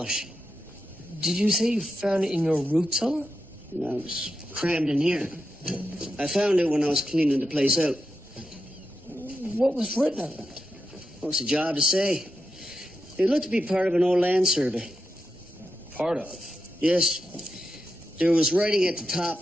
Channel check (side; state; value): both; normal; correlation 0.88